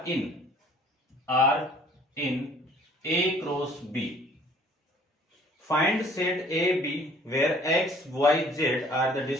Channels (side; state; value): both; normal; correlation 0.55